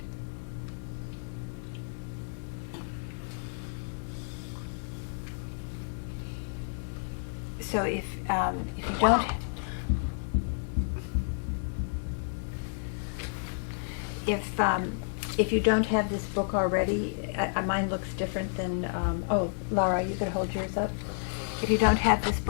So if you don't if you don't have this book already, mine looks different than oh, Laura, you could hold yours up. If you don't have this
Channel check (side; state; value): right; silent; digital silence